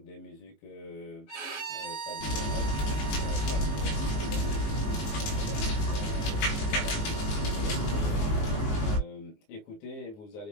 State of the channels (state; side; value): late; right; 19 ms